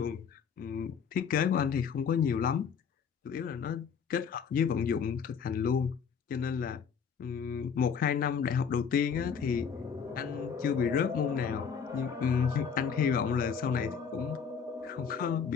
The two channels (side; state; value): right; quieter; 6.7 dB